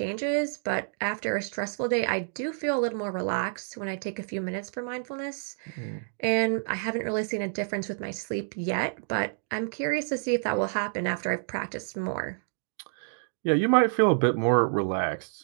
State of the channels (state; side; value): silent; left; digital silence